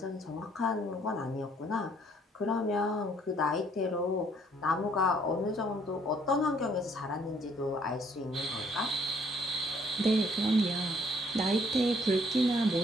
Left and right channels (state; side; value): normal; both; correlation 0.63